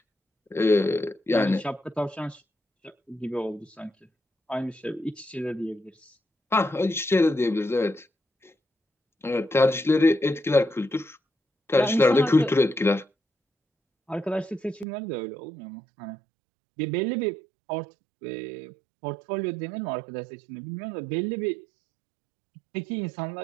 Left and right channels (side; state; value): left; drops out; at 14.9 s